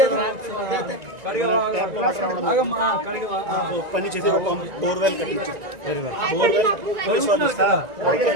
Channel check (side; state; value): left; late; 1.9 ms